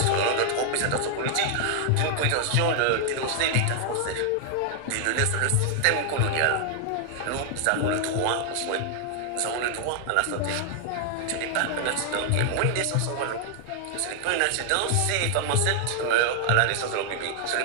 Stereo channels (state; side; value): different; both; correlation 0.00